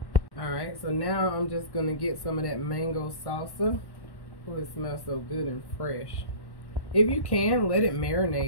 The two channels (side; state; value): right; late; 1.1 ms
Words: Alright, so now I'm just going to get some of that mango salsa. Oh, it smells so good and fresh. If you can, let it